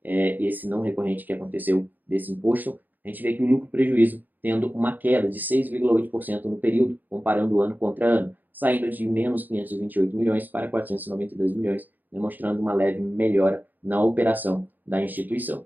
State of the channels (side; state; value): left; late; 0.085 ms